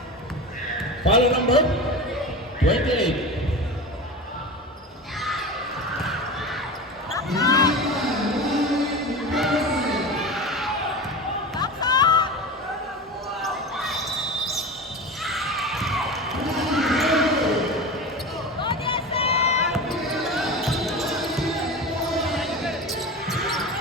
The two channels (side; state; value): both; normal; correlation 0.29